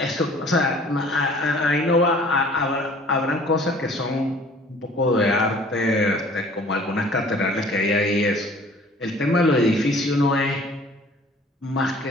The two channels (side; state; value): both; normal; correlation 0.51